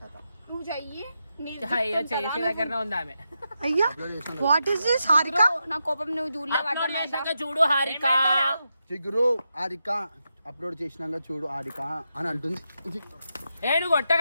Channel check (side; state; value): both; inverted; correlation -0.86